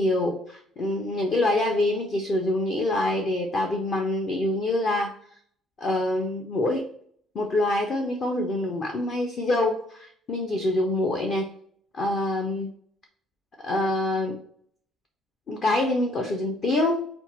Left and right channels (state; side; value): normal; both; correlation 0.65